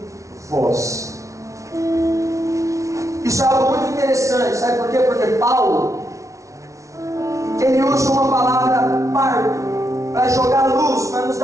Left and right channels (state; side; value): late; left; 0.15 ms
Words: vós. Isso é algo muito interessante, sabe por quê? Porque Paulo, ele usa uma palavra parto para jogar luz, para nos